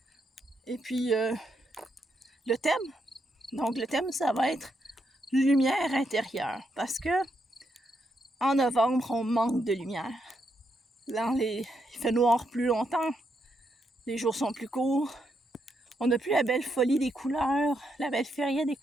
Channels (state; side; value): normal; both; correlation 0.80